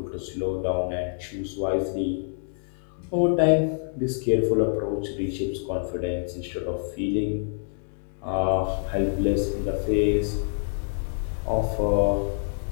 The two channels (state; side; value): silent; right; digital silence